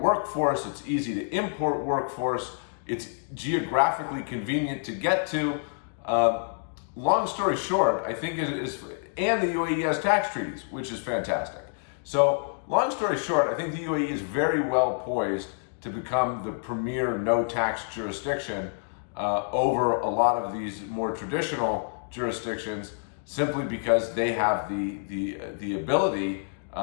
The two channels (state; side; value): silent; right; digital silence